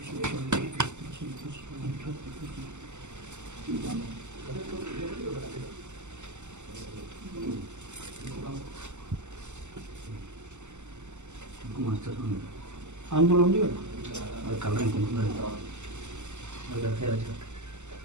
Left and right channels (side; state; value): left; late; 0.83 ms